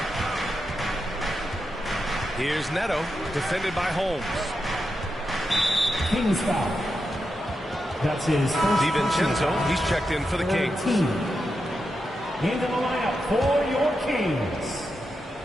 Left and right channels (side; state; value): both; normal; correlation 0.87